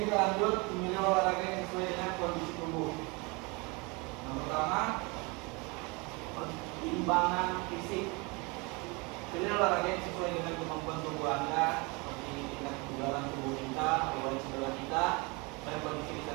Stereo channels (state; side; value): quieter; left; 28.1 dB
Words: kita lanjut memilih olahraga yang sesuai dengan kondisi tubuh. Yang pertama, pertimbangan fisik. Pilih olahraga yang sesuai dengan kemampuan tubuh Anda, seperti tingkat kebugaran tubuh kita, riwayat cedera kita, dan kondisi